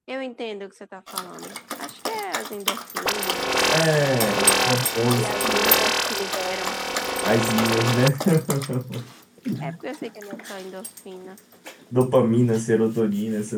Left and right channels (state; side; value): identical; both; correlation 1.00